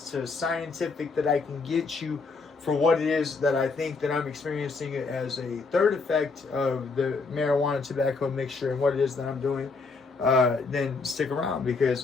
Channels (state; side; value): quieter; right; 4.2 dB